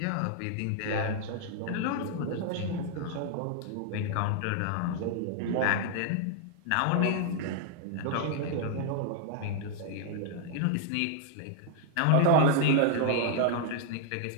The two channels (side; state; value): both; different; correlation -0.01